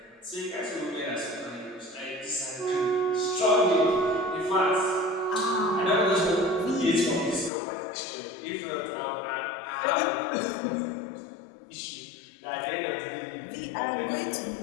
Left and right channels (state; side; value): drops out; right; at 7.5 s